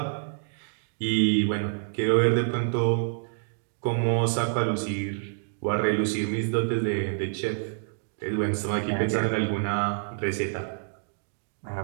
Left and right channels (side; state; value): left; silent; digital silence